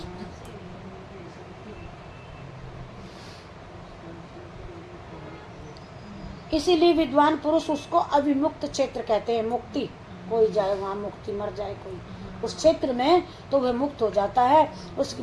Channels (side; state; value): both; identical; correlation 1.00